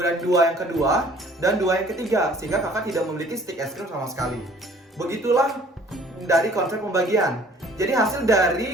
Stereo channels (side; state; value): both; normal; correlation 0.54